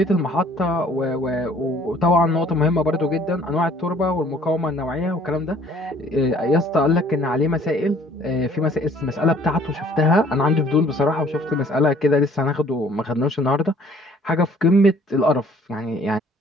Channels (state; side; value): normal; both; correlation 0.56